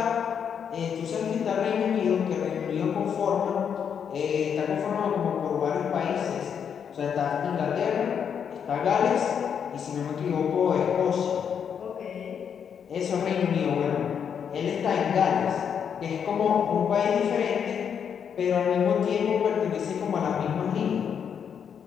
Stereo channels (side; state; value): right; quieter; 7.6 dB